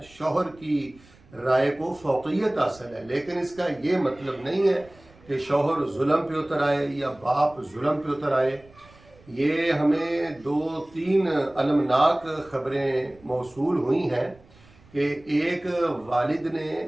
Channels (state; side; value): noise; right; rumble, 26 dB below the sound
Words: شوہر کی رائے کو فوقیت حاصل ہے، لیکن اس کا یہ مطلب نہیں ہے کہ شوہر ظلم پہ اتر آئے یا باپ ظلم پہ اتر آئے۔ یہ ہمیں 2-3 المناک خبریں موصول ہوئی ہیں کہ ایک والد نے